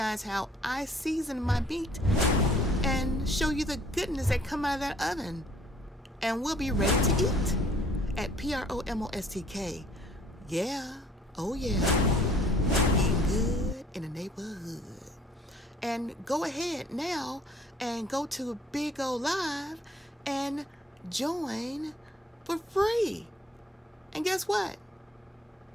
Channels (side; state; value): both; normal; correlation 0.58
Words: how I season my meat and show you the goodness that come out of that oven. And we'll be ready to eat at PROMOSTK. Yeah, oh yeah. Good in the neighborhood. And go ahead now and go to BIGO Live and join for free. And guess what?